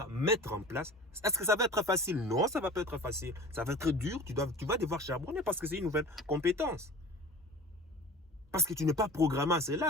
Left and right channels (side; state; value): both; normal; correlation 0.40